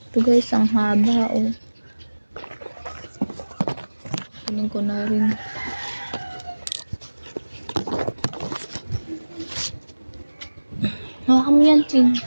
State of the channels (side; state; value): both; inverted; correlation -1.00